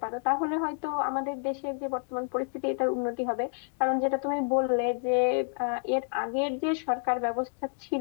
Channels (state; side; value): silent; right; digital silence